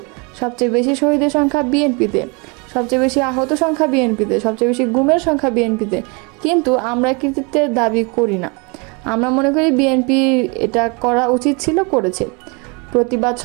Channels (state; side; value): quieter; left; 31.0 dB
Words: সবচেয়ে বেশি শহীদের সংখ্যা বিএনপিতে, সবচেয়ে বেশি আহত সংখ্যা বিএনপিতে, সবচেয়ে বেশি গুমের সংখ্যা বিএনপিতে, কিন্তু আমরা কৃতিত্বের দাবি করি না। আমরা মনে করি বিএনপি এটা করা উচিত ছিল, করেছে। প্রতিবাদ